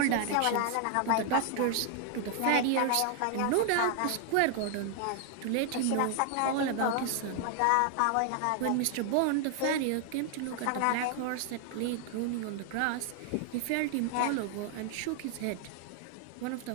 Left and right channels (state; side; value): different; both; correlation 0.00